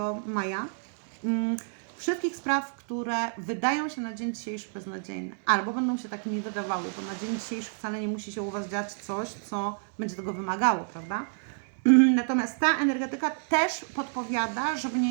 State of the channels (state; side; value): silent; left; digital silence